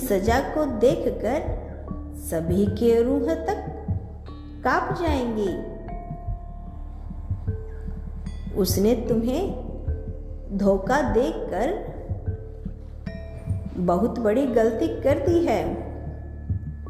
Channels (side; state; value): both; identical; correlation 1.00